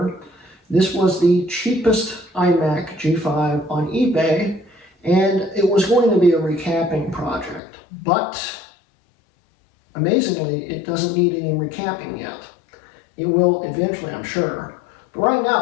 This was the cheapest iMac G5 on eBay, and it was going to be a recapping project. But amazingly, it doesn't need any recapping yet. It will eventually, I'm sure. But right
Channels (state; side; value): drops out; right; at 7.6 s